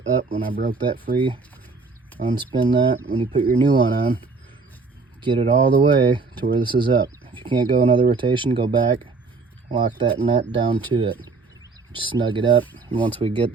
up when I broke that free. Unspin that. When you put your new one on, get it all the way to where this is up. If you can't go another rotation, go back, lock that nut down to it. Just snug it up. And once we get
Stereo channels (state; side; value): quieter; left; 4.1 dB